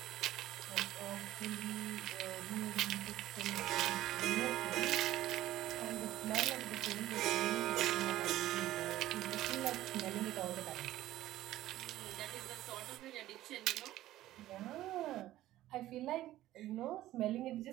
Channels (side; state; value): left; quieter; 14.6 dB